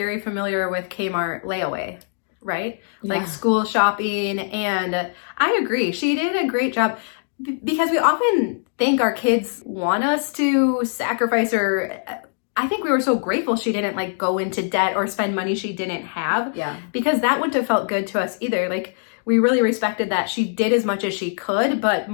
familiar with Kmart layaway, right? Like school shopping. And I agree. She did a great job. Because we often think our kids want us to sacrifice, or I think we were so grateful she didn't like go into debt or spend money she didn't have. Yeah. Because that wouldn't have felt good to us either. Like we really respected that she did as much as she could, but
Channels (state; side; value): silent; right; digital silence